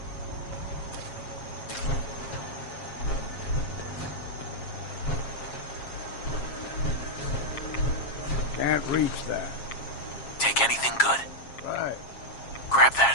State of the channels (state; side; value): late; right; 7.4 ms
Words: Can't reach that. Take anything good. Right. Grab